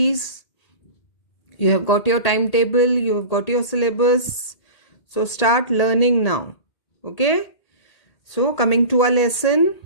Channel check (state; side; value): late; right; 2.1 ms